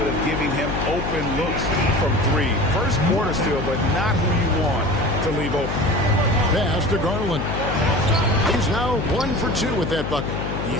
of giving him open looks from three. First quarter still, but not who you want to leave open. Pass to Garland. He's now 1 for 2 with that bucket. You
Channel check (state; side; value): noise; left; hum, 4 dB below the sound